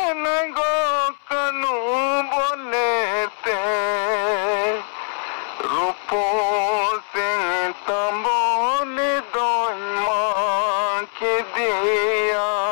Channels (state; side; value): silent; right; 64 dB below the other